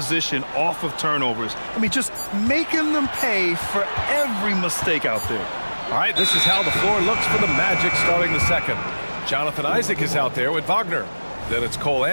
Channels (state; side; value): inverted; both; correlation -1.00